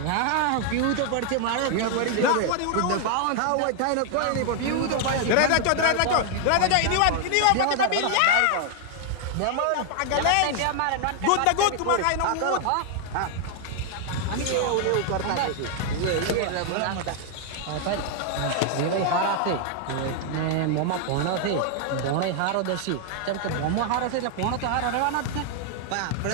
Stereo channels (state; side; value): different; both; correlation 0.00